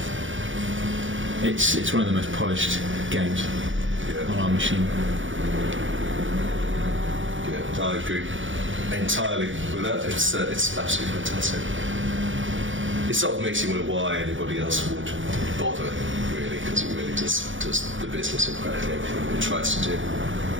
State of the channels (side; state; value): left; late; 0.56 ms